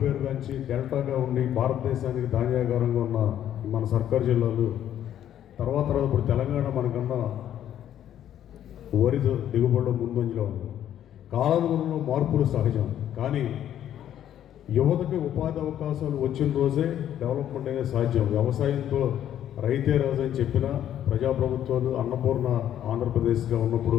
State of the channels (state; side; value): quieter; right; 10.9 dB